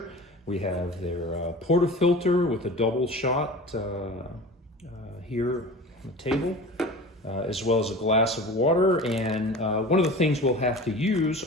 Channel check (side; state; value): both; normal; correlation 0.36